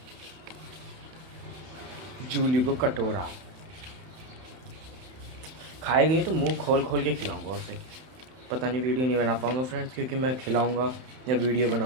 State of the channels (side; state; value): left; late; 31 ms